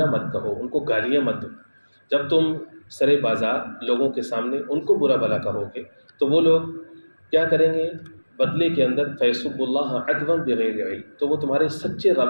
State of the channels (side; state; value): both; inverted; correlation -1.00